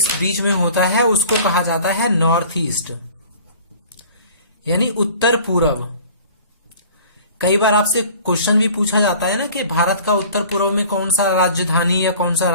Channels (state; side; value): inverted; both; correlation -0.46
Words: में होता है उसको कहा जाता है नॉर्थ ईस्ट, यानी उत्तर पूर्व। कई बार आपसे क्वेश्चन भी पूछा जाता है ना कि भारत का उत्तर पूर्व में कौन सा राजधानी या कौन सा